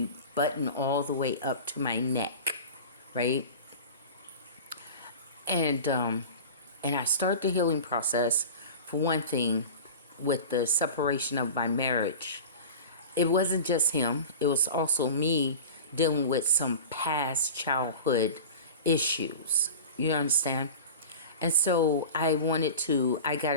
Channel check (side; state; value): both; inverted; correlation -0.33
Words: buttoned all the way up to my neck, right? And I start the healing process, for one thing, with the separation of my marriage. It wasn't just him, it was also me dealing with some past childhood issues. You understand? And so I